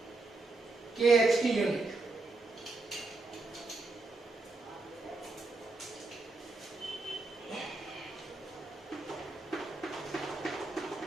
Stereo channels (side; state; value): left; quieter; 3.3 dB